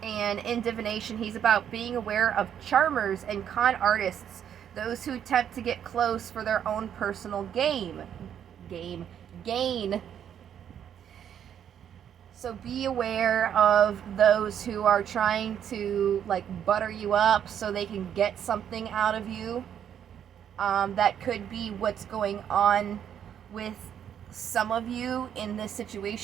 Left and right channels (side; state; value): left; quieter; 9.2 dB